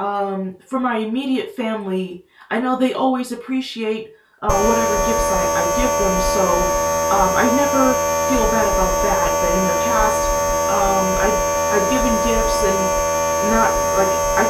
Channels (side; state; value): both; identical; correlation 1.00